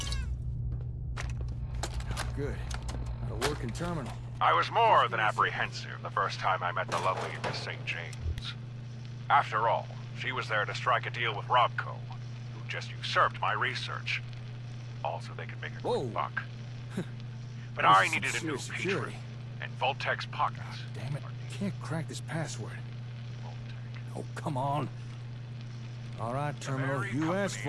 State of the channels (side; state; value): both; identical; correlation 1.00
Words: Good. Got a working terminal. I was more than apprehensive the first time I met the lovely Miss St. James. After all, she was there to strike a deal with Robco, who just usurped my research. Also, they could make a quick buck. But I needed a new patron, and Vault-Tec's pockets. Damn it, I can't crack this password. Oh, come on. All right, terminal, you asked